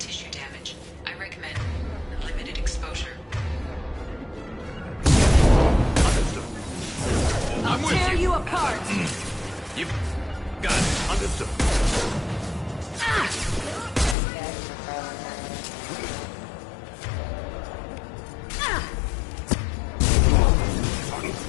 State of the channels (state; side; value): drops out; right; at 14.2 s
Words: damage. I recommend limited exposure. I'm with Tear you! you apart! You got it. Understood.